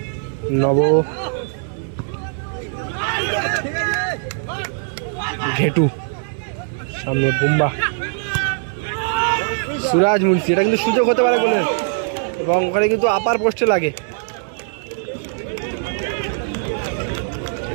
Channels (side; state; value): left; silent; 65 dB below the other